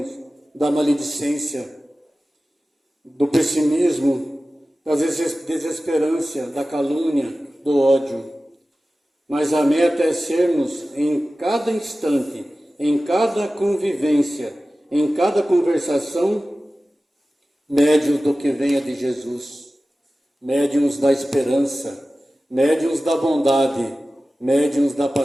da maledicência, do pessimismo, da desesperança, da calúnia, do ódio. Mas a meta é sermos, em cada instante, em cada convivência, em cada conversação, médiuns do que venha de Jesus, médiuns da esperança, médiuns da bondade, médiuns da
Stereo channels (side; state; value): both; normal; correlation 0.96